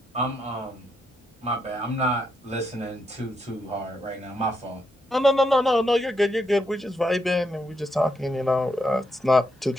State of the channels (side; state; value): both; normal; correlation 0.79